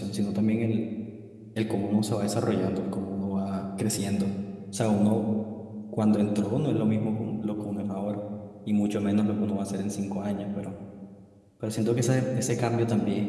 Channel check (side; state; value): both; identical; correlation 1.00